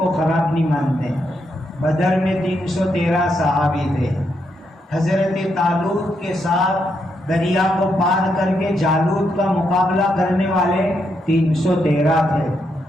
خراب نہیں مانتے. بدر میں 313 صحابی تھے. حضرت طالوت کے ساتھ دریا کو پار کر کے جالوت کا مقابلہ کرنے والے 313 تھے.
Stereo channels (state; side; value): normal; both; correlation 0.80